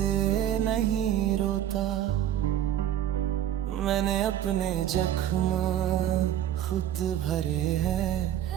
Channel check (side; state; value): left; quieter; 11.2 dB